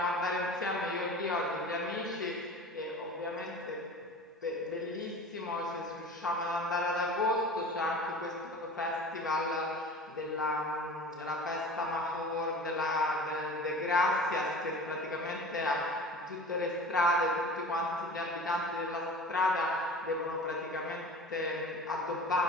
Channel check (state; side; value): normal; both; correlation 0.38